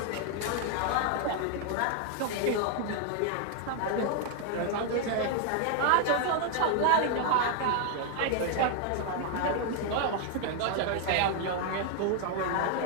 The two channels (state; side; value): different; both; correlation 0.00